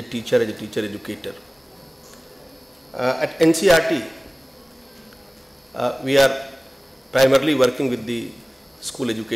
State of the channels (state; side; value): normal; both; correlation 0.98